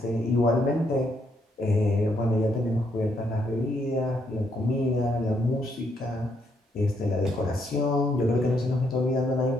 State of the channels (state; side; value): normal; both; correlation 0.74